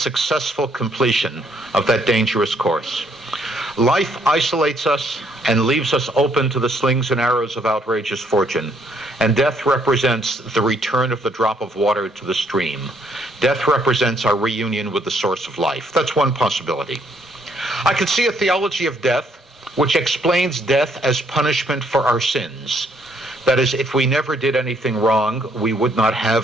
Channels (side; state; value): both; normal; correlation 0.69